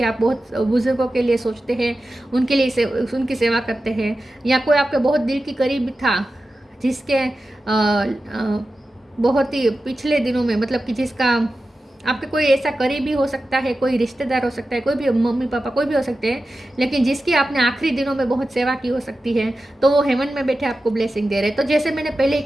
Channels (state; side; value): normal; both; correlation 0.93